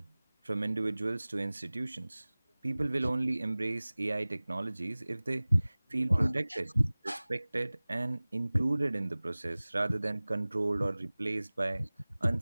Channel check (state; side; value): inverted; both; correlation -0.99